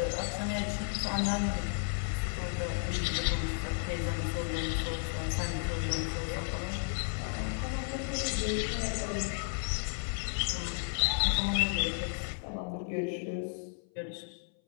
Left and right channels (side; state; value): right; silent; 56 dB below the other